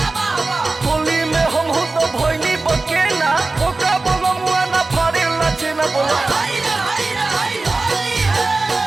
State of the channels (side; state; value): left; quieter; 3.4 dB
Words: बाबा होली में हम हो तो भोइनी बकेला ओका बलमुआ ना फाड़े लचे ना बोला हाय रे हाय होली है